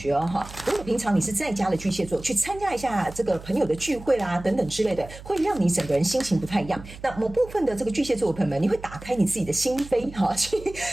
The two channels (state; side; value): noise; right; hum, 16 dB below the sound